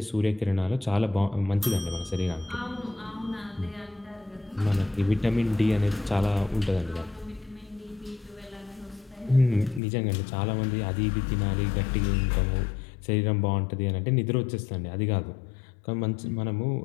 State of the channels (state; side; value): drops out; right; at 9.8 s